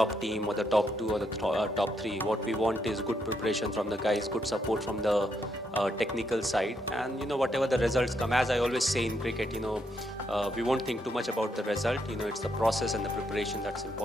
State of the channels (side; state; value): both; normal; correlation 0.77